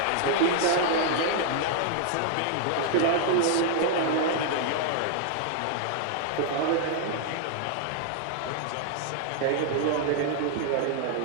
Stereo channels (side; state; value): both; different; correlation -0.01